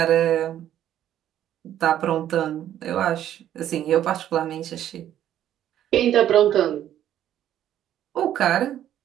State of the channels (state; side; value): quieter; left; 11.4 dB